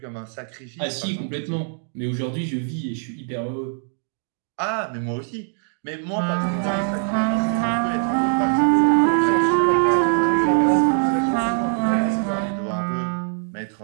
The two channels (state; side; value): silent; left; 64 dB below the other